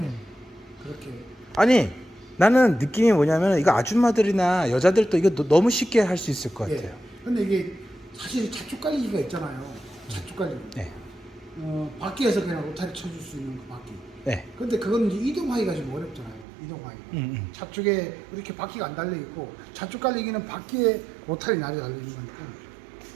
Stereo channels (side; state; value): left; drops out; at 16.4 s